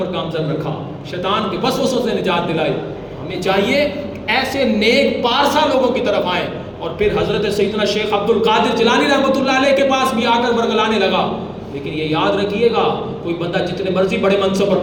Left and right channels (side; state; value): both; identical; correlation 1.00